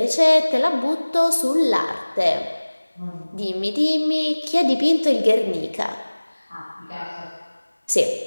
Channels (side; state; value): both; inverted; correlation -1.00